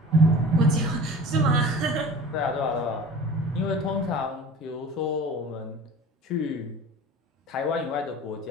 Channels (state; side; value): normal; both; correlation 0.40